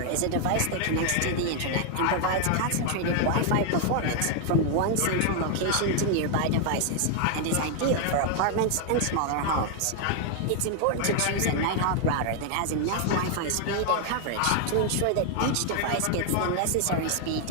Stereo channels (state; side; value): different; both; correlation 0.00